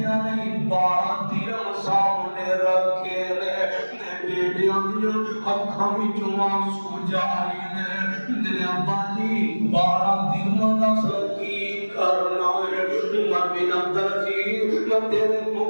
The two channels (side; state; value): both; inverted; correlation -1.00